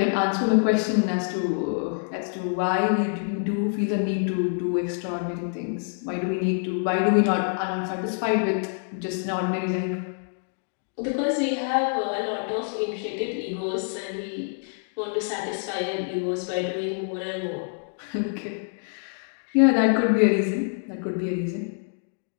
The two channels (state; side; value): silent; right; digital silence